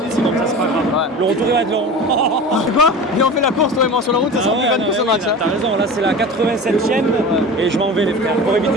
Sinon, ça, c'est pas grave. Ouais. Le retour, il va être long. C'est quoi? Viens, on fait la course, toi et moi sur la route, ça sera plus fun que ce match. Hein. T'as raison, là, c'est la 87e. Et je m'en vais, les frères. Pour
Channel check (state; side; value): normal; both; correlation 0.34